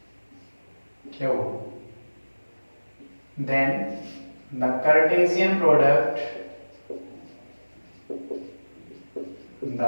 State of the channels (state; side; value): inverted; both; correlation -1.00